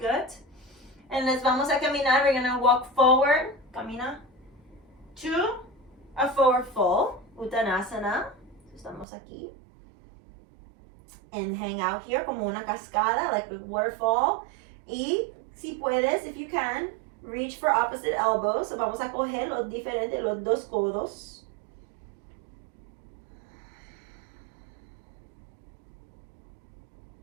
And les vamos a caminar. We're going to walk forward. Camina. To a forward fold. Uttanasana. Estamos aquí. And hang out here como una cascada, like a waterfall. Y si puedes, if you can, reach for opposite elbows. So vamos a coger los diferentes, los 2 codos.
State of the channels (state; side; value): drops out; left; at 9.1 s